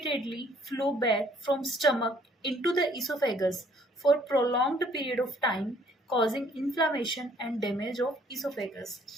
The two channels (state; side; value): normal; both; correlation 0.61